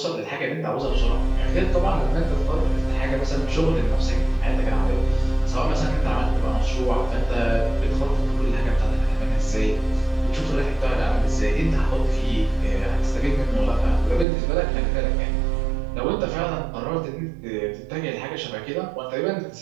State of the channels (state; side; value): drops out; left; at 14.2 s